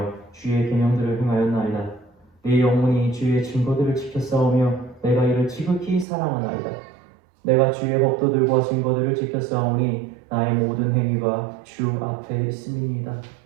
주의 계명들을 행하였나이다. 내 영혼이 주의 증거들을 지켰사오며 내가 이를 지극히 사랑하나이다. 내가 주의 법도들과 증거들을 지켰사오니 나의 모든 행위가 주 앞에 있음이니이다.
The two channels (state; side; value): drops out; left; at 6.1 s